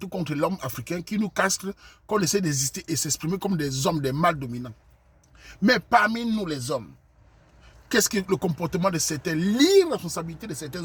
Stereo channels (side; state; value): both; identical; correlation 1.00